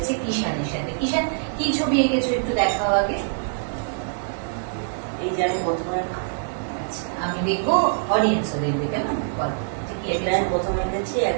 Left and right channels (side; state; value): left; silent; digital silence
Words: কিষানের সাথে। কিষান, কি ছবি এঁকেছো একটু দেখাও আগে। এই যে আমি প্রথমে আমি দেখবো, অডিয়েন্সও দেখবে, কেমন বল। এটা আমি প্রথমে এঁকেছি